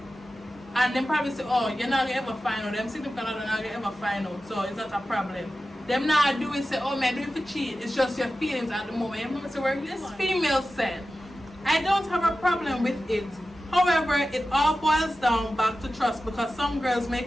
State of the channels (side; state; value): both; normal; correlation 0.94